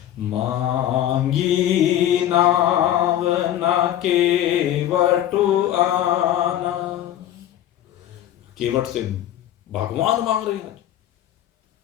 मांगी नाव ना केवटु आना। केवट से भगवान मांग रहे हैं।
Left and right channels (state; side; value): quieter; right; 11.9 dB